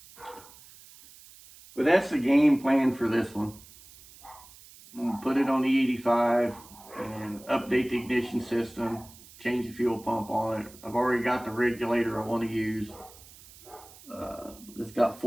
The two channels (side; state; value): right; noise; hiss, 21 dB below the sound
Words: But that's the game plan for this one. I'm going to put it on the 85 and update the ignition system, change the fuel pump on it. I've already got the regulator I want to use. It's got